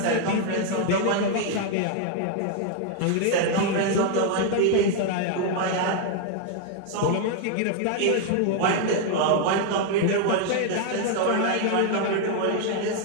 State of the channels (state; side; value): different; both; correlation 0.00